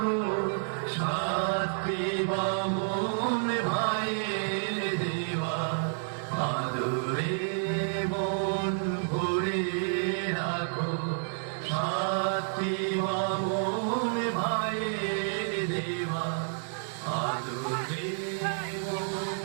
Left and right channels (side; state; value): left; silent; digital silence